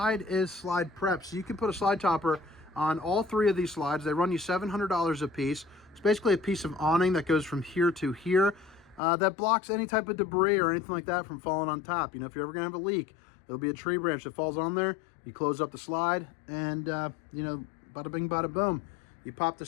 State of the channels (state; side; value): drops out; right; at 9.0 s